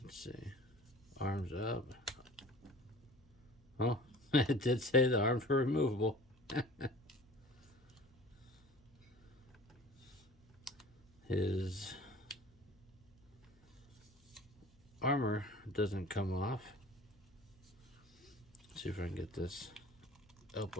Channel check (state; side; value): noise; left; hum, 29 dB below the sound